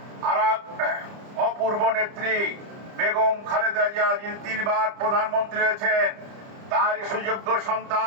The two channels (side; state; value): left; late; 30 ms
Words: আর অপূর্ব নেত্রী বেগম খালেদা জিয়া, যিনি 3 বার প্রধানমন্ত্রী হয়েছেন, তারই সুযোগ্য